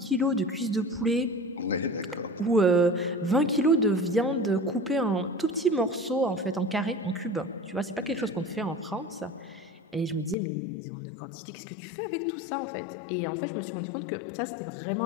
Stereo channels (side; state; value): right; drops out; at 10.4 s